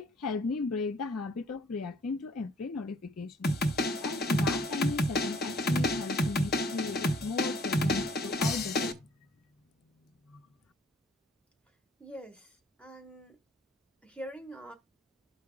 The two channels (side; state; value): both; normal; correlation 0.59